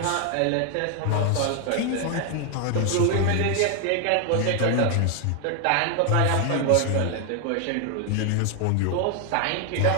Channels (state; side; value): different; both; correlation 0.00